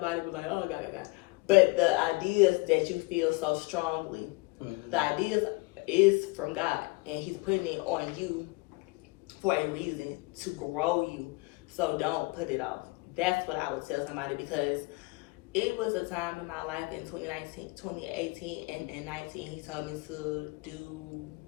to be like, oh, God. But the ideas that you feel so strongly, the ideas is from God, and He's putting it on you for a reason to grow you. So don't put it off. That's what I would tell somebody, because it was a time in my life in 2018 and 19. He told me to do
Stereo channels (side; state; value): right; quieter; 24.8 dB